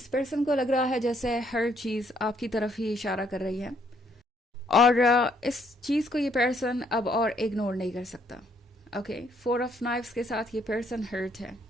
पर्सन को लग रहा है जैसे हर चीज़ आपकी तरफ ही इशारा कर रही है, और इस चीज़ को ये पर्सन अब और इग्नोर नहीं कर सकता। ओके, फोर ऑफ नाइफ्स के साथ ये पर्सन हर्ट है,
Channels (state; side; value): normal; both; correlation 0.69